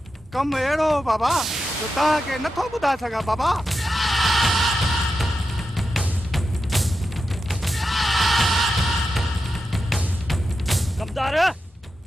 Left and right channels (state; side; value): normal; both; correlation 0.89